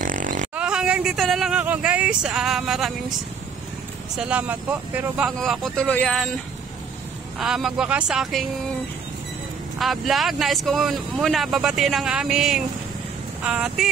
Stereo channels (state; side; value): quieter; left; 6.2 dB